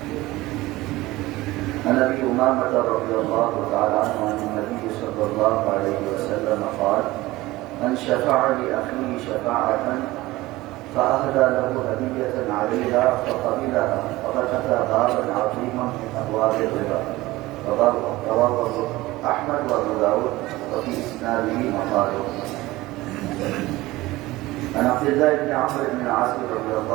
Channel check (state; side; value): quieter; left; 18.9 dB